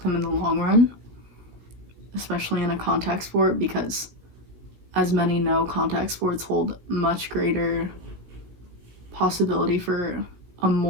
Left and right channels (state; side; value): late; left; 16 ms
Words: them in the long run, especially in a contact sport, because as many know, contact sports hold much greater possibility for a